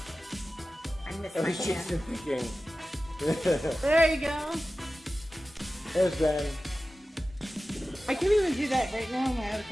I miss I my was just hand. thinking. There you go. There's Ben. I can't even do that right now in my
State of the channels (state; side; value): normal; both; correlation 0.95